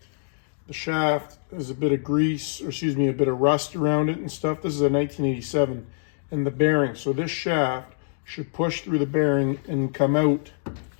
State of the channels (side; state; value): right; silent; digital silence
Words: the shaft has a bit of grease, or excuse me, a bit of rust around it and stuff. This is a 1987. And the bearing. So this shaft should push through the bearing and come out